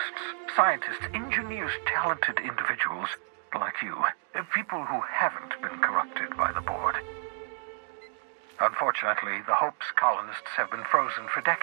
scientists, engineers, talented individuals like you, people who haven't been corrupted by the board. Unfortunately, the Hope's colonists have been frozen for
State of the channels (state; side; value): silent; left; digital silence